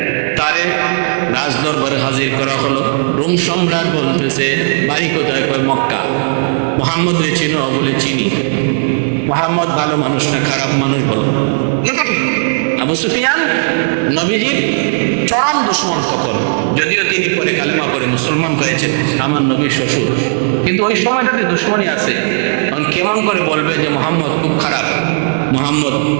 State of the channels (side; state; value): left; silent; digital silence